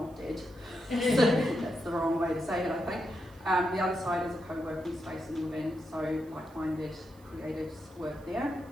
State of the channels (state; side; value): noise; right; hiss, 28 dB below the sound